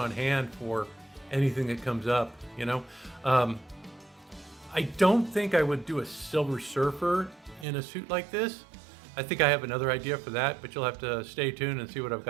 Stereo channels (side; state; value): left; drops out; at 7.7 s